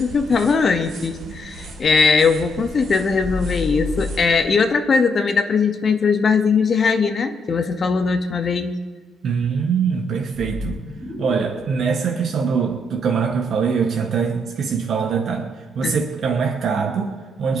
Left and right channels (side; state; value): both; normal; correlation 0.75